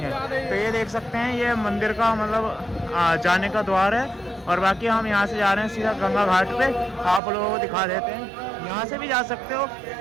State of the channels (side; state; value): left; drops out; at 7.2 s